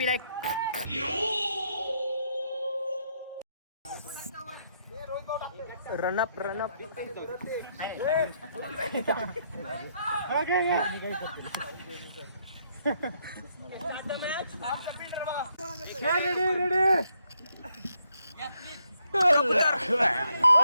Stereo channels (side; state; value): both; inverted; correlation -0.75